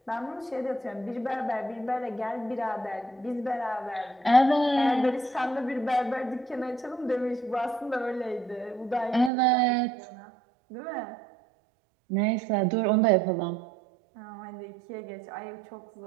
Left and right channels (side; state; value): left; drops out; at 9.3 s